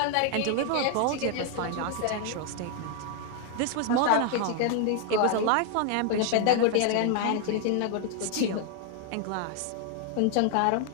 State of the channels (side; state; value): both; different; correlation 0.00